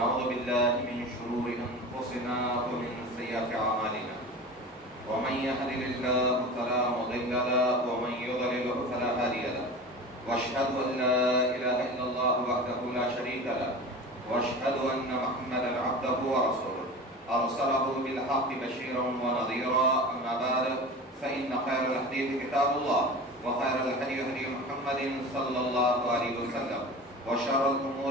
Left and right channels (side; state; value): both; normal; correlation 0.33